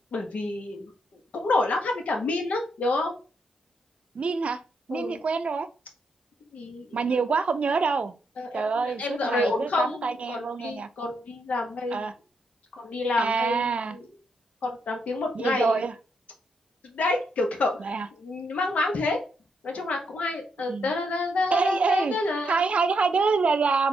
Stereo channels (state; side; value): normal; both; correlation 0.78